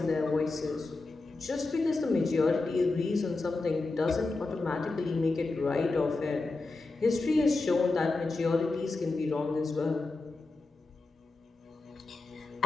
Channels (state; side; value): quieter; right; 3.4 dB